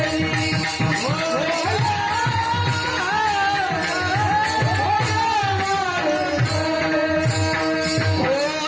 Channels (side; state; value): both; identical; correlation 1.00